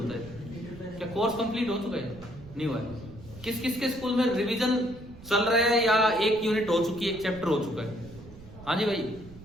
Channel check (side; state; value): right; noise; rumble, 18 dB below the sound